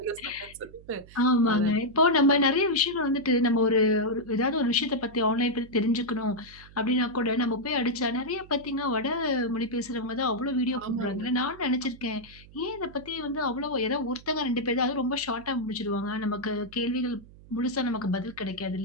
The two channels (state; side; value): noise; right; hum, 21 dB below the sound